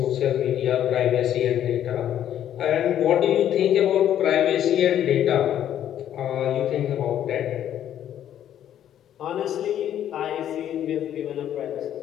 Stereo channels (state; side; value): quieter; right; 10.7 dB